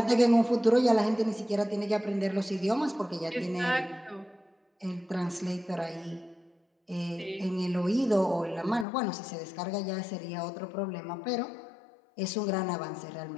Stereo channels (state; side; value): drops out; right; at 8.8 s